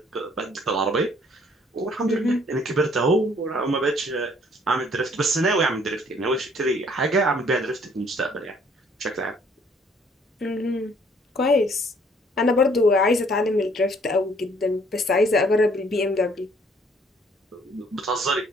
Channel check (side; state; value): both; normal; correlation 0.61